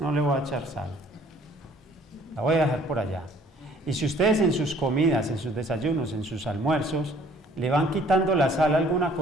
no le voy a echar sal, la voy a dejar por allá. Y si ustedes en sus comidas, en sus desayunos, en sus almuerzos, le van quitando la sal a alguna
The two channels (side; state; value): both; normal; correlation 0.57